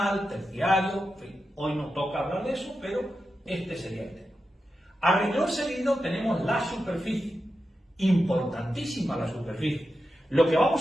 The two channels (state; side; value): normal; both; correlation 0.90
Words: terciario, en fin, hoy nos toca hablar de eso, pero este sería el tema. A renglón seguido tenemos la superficie, importantísima la superficie. Lo que